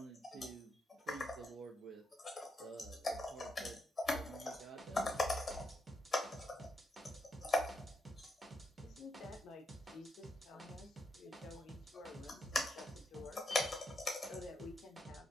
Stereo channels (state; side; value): normal; both; correlation 0.81